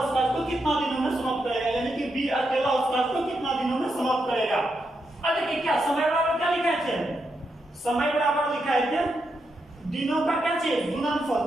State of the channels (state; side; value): normal; both; correlation 0.83